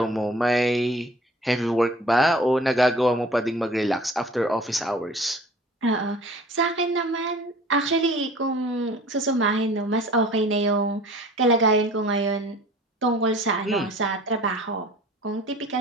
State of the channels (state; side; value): normal; both; correlation 0.47